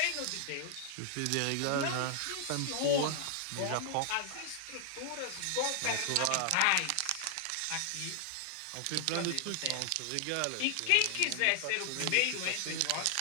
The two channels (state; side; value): different; both; correlation 0.00